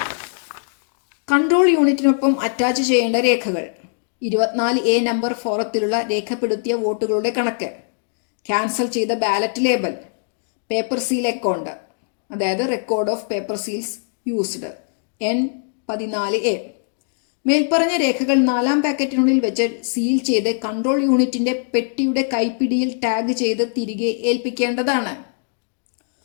കൺട്രോൾ യൂണിറ്റിനൊപ്പം അറ്റാച്ച് ചെയ്യേണ്ട രേഖകൾ: 24A നമ്പർ ഫോറത്തിലുള്ള രേഖപ്പെടുത്തിയ വോട്ടുകളുടെ കണക്ക്, ക്യാൻസൽ ചെയ്ത ballot label, paper seal account അതായത് record of paper seals used N14A. മേൽപ്പറഞ്ഞ രേഖകൾ 4-ാം പാക്കറ്റിനുള്ളിൽ വെച്ച് സീൽ ചെയ്ത് കൺട്രോൾ യൂണിറ്റിന്റെ പെട്ടിയുടെ കൈപ്പിടിയിൽ ടാഗ് ചെയ്ത് തിരികെ ഏൽപ്പിക്കേണ്ടതാണ്.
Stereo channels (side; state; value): right; silent; digital silence